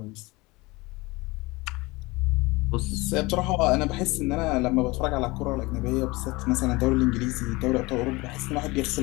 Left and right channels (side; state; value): right; quieter; 23.0 dB